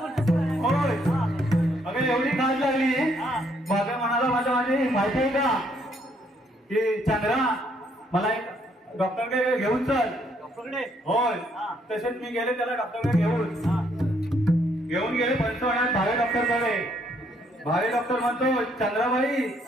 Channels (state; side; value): normal; both; correlation 0.70